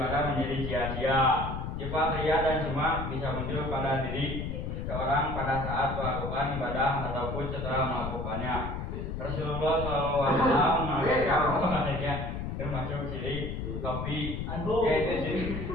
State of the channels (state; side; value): noise; left; rumble, 4 dB below the sound